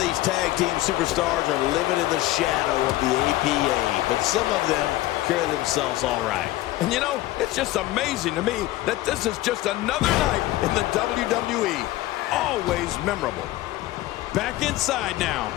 tag team superstars are living in the shadow of the APA, but some of them carry themselves all right. And you know, it's just amazing to me that this is just another night in the WWE. Always memorable. Back inside now.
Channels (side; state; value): right; quieter; 16.6 dB